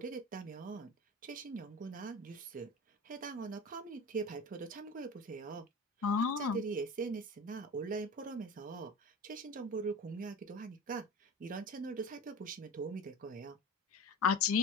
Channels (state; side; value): normal; both; correlation 0.33